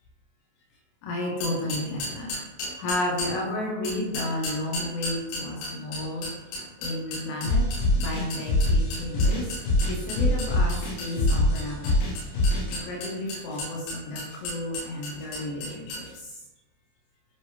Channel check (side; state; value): right; late; 28 ms